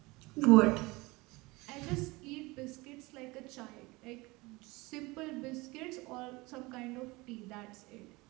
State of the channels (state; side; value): quieter; left; 23.3 dB